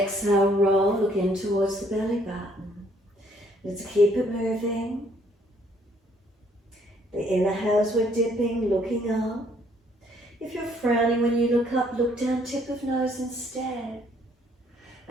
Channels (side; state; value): both; normal; correlation 0.65